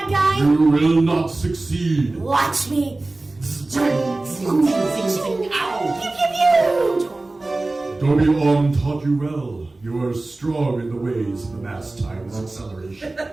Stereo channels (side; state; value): left; quieter; 3.0 dB